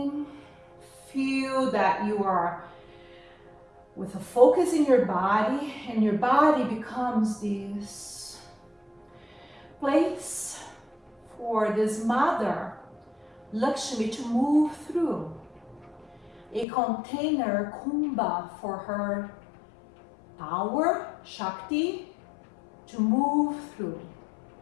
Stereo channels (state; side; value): drops out; right; at 16.7 s